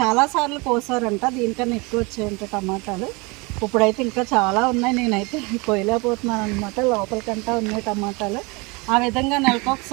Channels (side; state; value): left; quieter; 27.3 dB